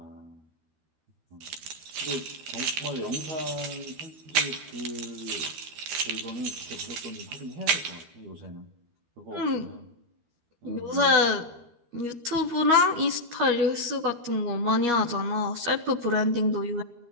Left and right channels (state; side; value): late; left; 13 ms